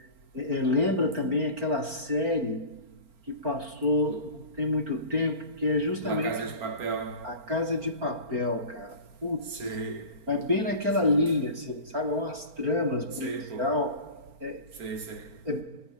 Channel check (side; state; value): left; late; 4.4 ms